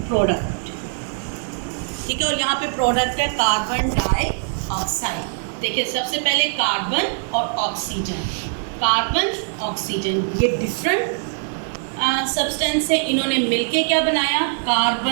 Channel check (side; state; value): left; silent; digital silence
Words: प्रोडक्ट। ठीक है, और यहाँ पे प्रोडक्ट है कार्बन डाइऑक्साइड। देखिए सबसे पहले कार्बन और ऑक्सीजन, कार्बन ऑक्सीजन ये डिफरेंट सब्सटेंस है, इन्होंने मिलके क्या बनाया?